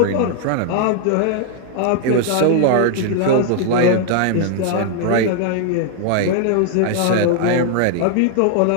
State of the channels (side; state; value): both; different; correlation 0.00